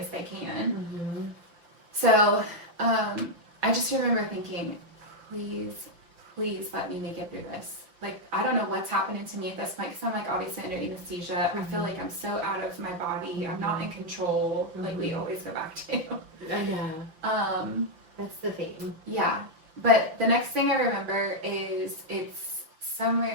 they can. So I just remember thinking, please let me make it through this. Like, I don't know what's happening to me at this point because I'm like obviously under anesthesia. I feel like I'm so out of my body. I'm not in control, like we always go back to. I know. That's the thing. Yeah. But the next thing I remember is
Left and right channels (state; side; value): late; left; 5.9 ms